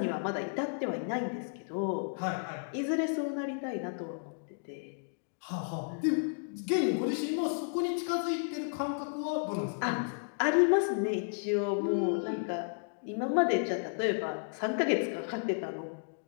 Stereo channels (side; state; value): right; silent; digital silence